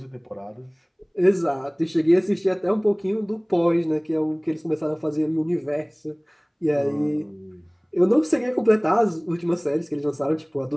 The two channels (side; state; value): both; identical; correlation 1.00